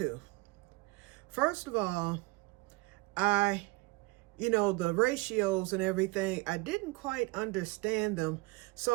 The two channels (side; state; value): left; quieter; 24.0 dB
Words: First of all, the ratios and everything, I didn't quite understand them.